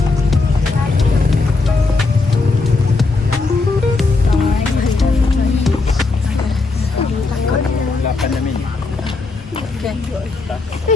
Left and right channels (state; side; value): quieter; right; 3.8 dB